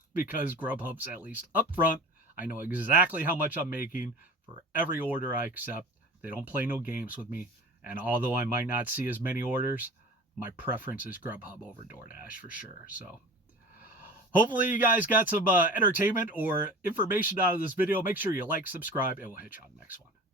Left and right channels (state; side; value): normal; both; correlation 0.38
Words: because Grubhub's at least upfront. I know exactly how much I'm making for every order I accept. They don't play no games with me. And although I might not see as many orders, my preference is Grubhub over DoorDash for sure. So hopefully you guys got some entertainment or information out of this video. Make sure you like, subscribe, and we'll hit you on the next one.